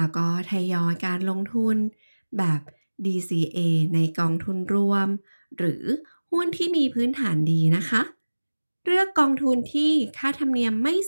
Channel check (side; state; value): both; inverted; correlation -1.00